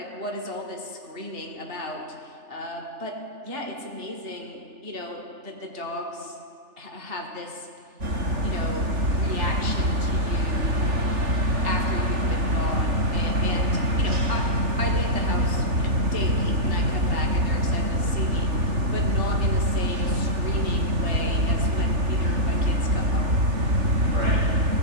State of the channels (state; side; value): late; left; 3.4 ms